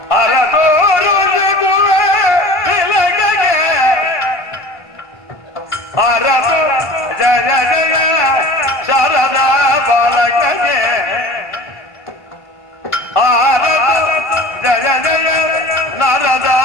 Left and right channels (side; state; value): right; late; 1.5 ms